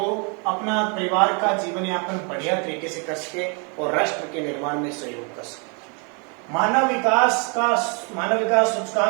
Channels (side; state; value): left; quieter; 35.3 dB